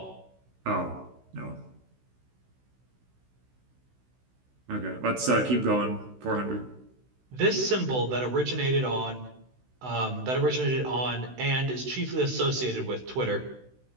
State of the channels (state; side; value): late; left; 16 ms